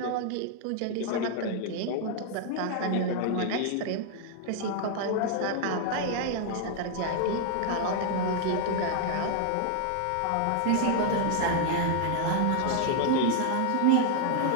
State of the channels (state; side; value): different; both; correlation 0.00